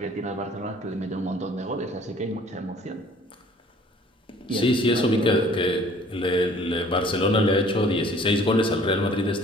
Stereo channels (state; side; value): normal; both; correlation 0.53